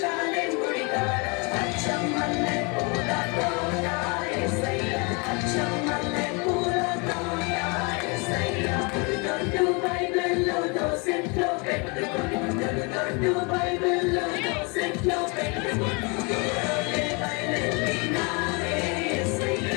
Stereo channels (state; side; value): quieter; right; 31.0 dB